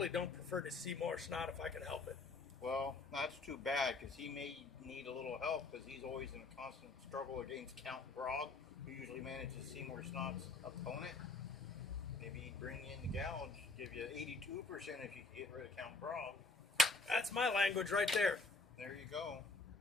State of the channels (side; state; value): right; quieter; 3.6 dB